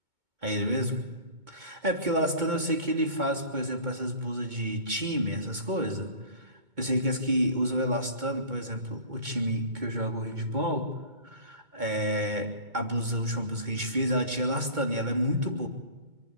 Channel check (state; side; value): late; left; 2.2 ms